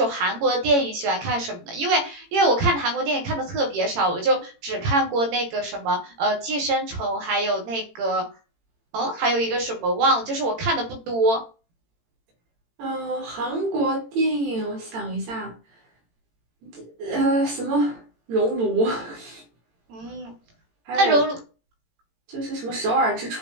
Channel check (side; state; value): left; late; 18 ms